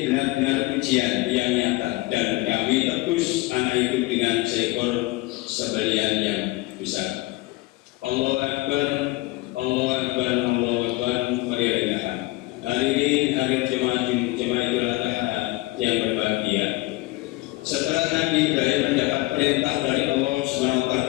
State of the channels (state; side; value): quieter; right; 20.5 dB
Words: benar-benar ujian yang nyata, dan kami tebus anak itu dengan seekor sembelihan yang besar. Allahu Akbar, Allahu Akbar, Allahu Akbar. Walillahilhamd. Hadirin hadirat jemaah Idul Adha yang berbahagia. Setelah Nabi Ibrahim mendapat perintah dari Allah Subhanahu wa taala